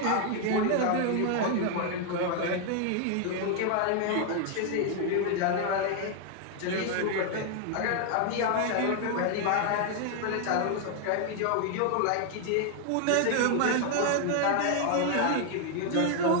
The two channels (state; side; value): different; both; correlation 0.00